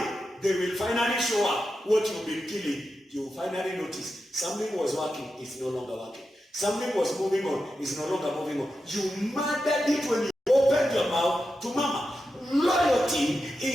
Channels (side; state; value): both; normal; correlation 0.89